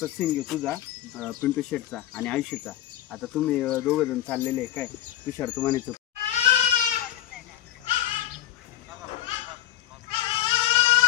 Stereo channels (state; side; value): quieter; right; 13.3 dB